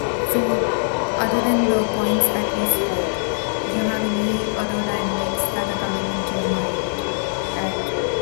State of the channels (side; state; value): right; silent; digital silence